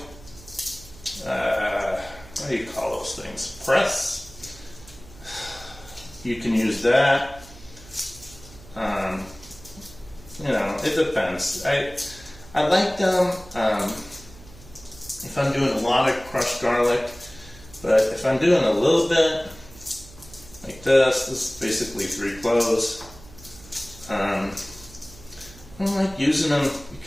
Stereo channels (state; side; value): noise; right; hum, 20 dB below the sound